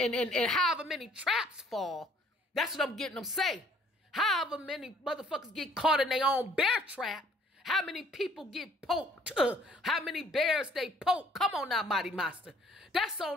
however many traps fall, that's what I'm getting them say. However many motherfuckers get caught in their own bear trap, how many people get poked, how many bears they poke. Come on now, Mighty Master. That's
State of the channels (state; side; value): normal; both; correlation 0.59